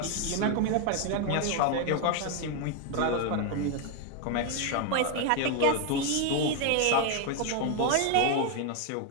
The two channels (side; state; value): both; different; correlation 0.01